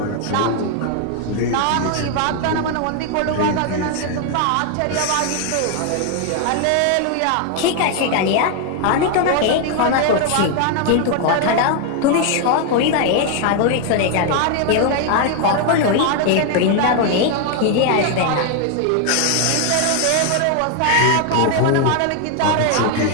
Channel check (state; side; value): different; both; correlation 0.00